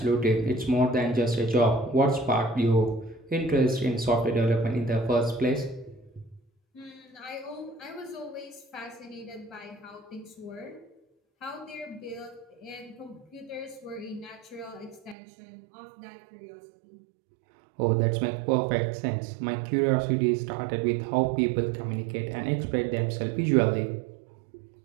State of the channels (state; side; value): drops out; left; at 15.2 s